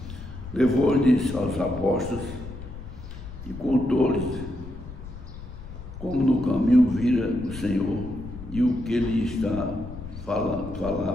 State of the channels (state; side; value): noise; left; rumble, 12 dB below the sound